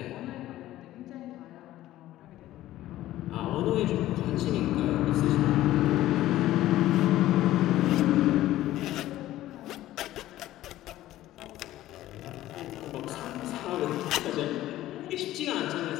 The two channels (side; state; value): right; quieter; 14.7 dB